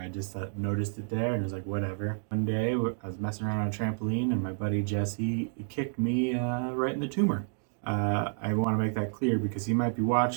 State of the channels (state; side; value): silent; left; 58 dB below the other